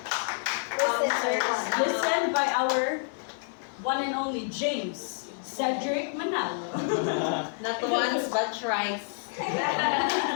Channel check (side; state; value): right; silent; 59 dB below the other